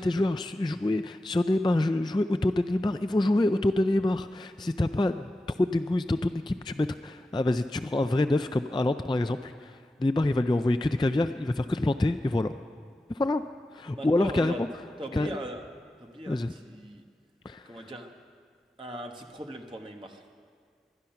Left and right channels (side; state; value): both; normal; correlation 0.92